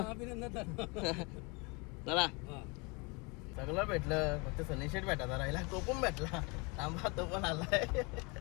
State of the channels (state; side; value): quieter; right; 29.2 dB